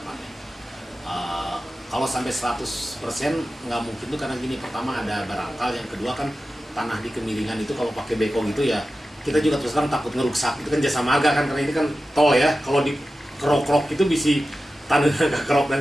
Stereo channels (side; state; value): both; normal; correlation 0.93